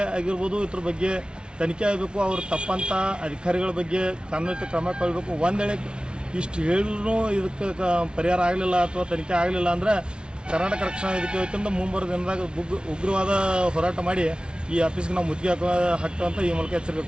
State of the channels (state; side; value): late; left; 0.056 ms